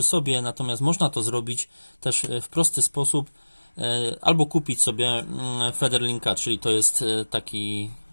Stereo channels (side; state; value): both; inverted; correlation -1.00